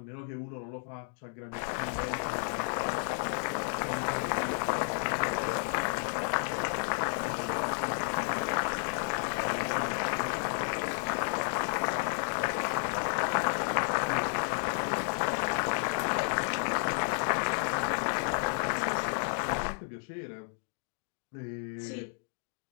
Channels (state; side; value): silent; right; digital silence